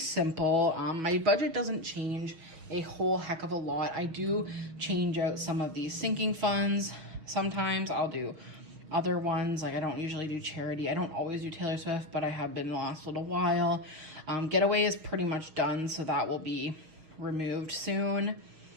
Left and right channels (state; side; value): late; left; 6.4 ms